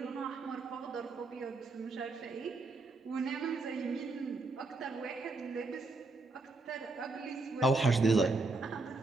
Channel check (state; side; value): quieter; left; 3.4 dB